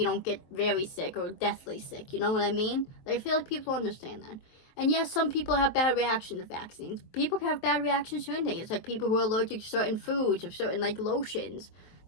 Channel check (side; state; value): right; late; 23 ms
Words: don't get very sick or deathly sick. You know what I mean? I feel like people understand that. And yes, some people have bad reactions to vaccines. People can have bad reactions to anything. It's like people who are allergic to certain foods or certain, like, lotions.